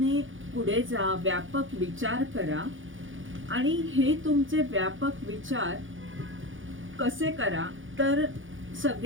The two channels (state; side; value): late; left; 0.57 ms